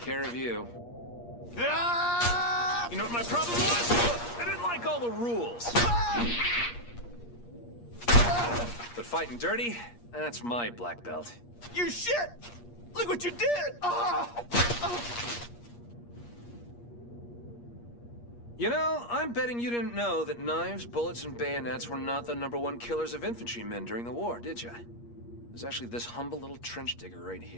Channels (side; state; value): right; late; 8.5 ms